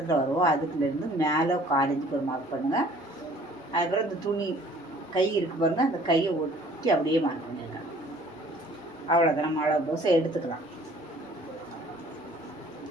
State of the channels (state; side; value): normal; both; correlation 0.54